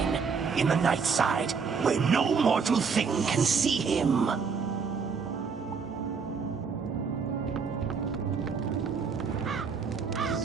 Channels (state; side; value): quieter; left; 5.6 dB